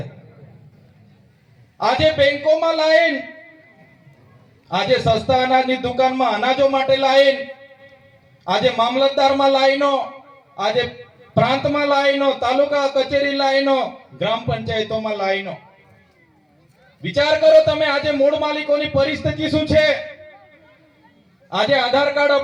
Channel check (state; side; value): identical; both; correlation 1.00